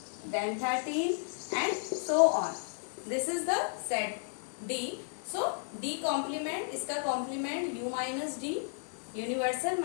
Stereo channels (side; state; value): right; silent; 56 dB below the other